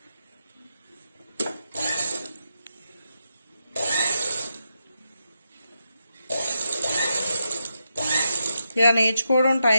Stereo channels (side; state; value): both; inverted; correlation -0.85